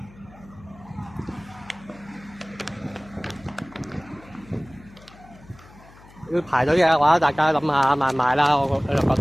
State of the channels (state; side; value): noise; left; hum, 23 dB below the sound